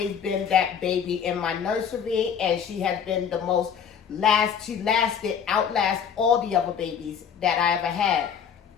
been that baby in my nursery, and she has been the most outlast all the other babies that I ever had.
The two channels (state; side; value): quieter; right; 7.6 dB